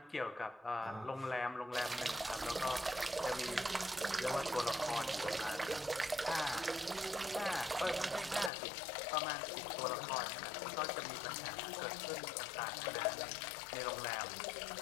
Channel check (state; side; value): drops out; right; at 8.5 s